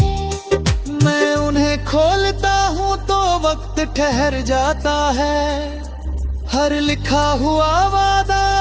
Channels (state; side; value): identical; both; correlation 1.00